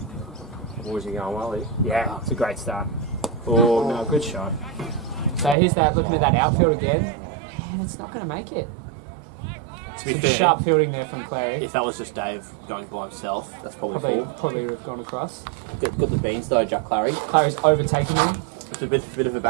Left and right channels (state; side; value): drops out; left; at 5.6 s